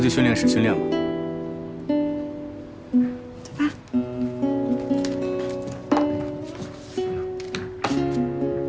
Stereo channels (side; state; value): both; identical; correlation 1.00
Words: 训练室训练吧。走吧。